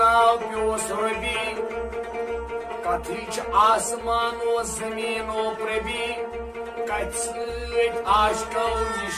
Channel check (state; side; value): identical; both; correlation 1.00